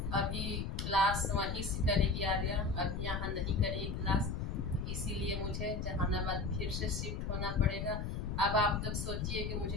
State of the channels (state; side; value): noise; left; rumble, 3 dB below the sound